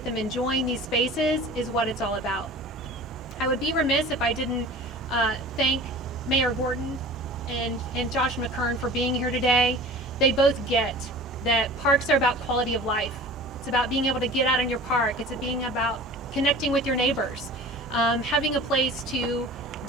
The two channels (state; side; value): normal; both; correlation 0.41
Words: them enjoying these spaces is what it's all about. I would be remiss if I didn't thank Mayor Gorton and Josh McCurn for being here today. They both get that parks are about quality of life. It's about being able to get out in your park. It's being about connecting with your neighbors, having a place to